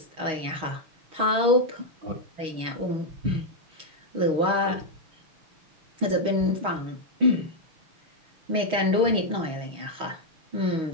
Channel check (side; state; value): left; late; 6.3 ms